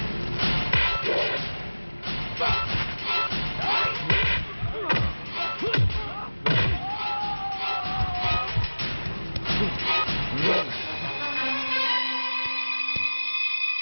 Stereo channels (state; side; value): inverted; both; correlation -1.00